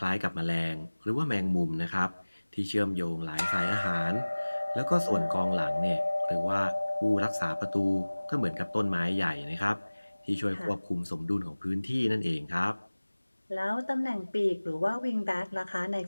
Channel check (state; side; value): inverted; both; correlation -1.00